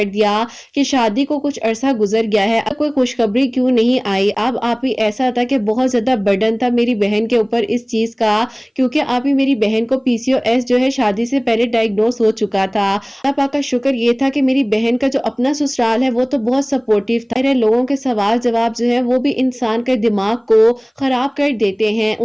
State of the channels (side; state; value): both; identical; correlation 1.00